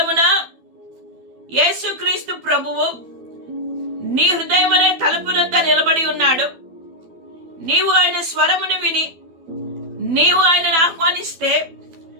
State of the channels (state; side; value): late; left; 12 ms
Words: యేసుక్రీస్తు ప్రభువు నీ హృదయం అనే తలుపునొద్ద నిలబడి ఉన్నాడు. నీవు ఆయన స్వరమును విని నీవు ఆయనను ఆహ్వానిస్తే